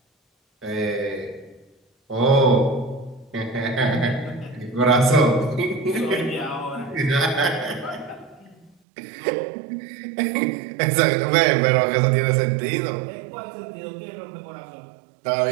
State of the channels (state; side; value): drops out; left; at 8.7 s